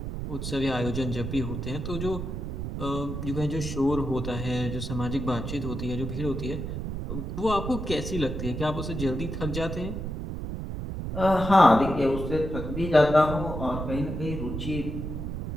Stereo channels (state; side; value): noise; right; rumble, 5 dB below the sound